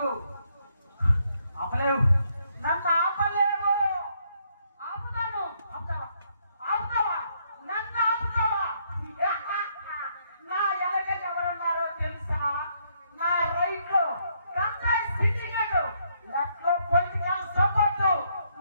ఆపలేవు, నన్ను ఆపలేవు. ఆపుతాను. ఆపుతావా? ఆపుతావా? నన్ను ఆపుతావా? నా వెనక ఎవరున్నారో తెలుసా? నా రైట్ లో గంగాయి సిండికేట్, లెఫ్ట్ లో పొలిటికల్ సపోర్ట్,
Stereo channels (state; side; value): inverted; both; correlation -0.73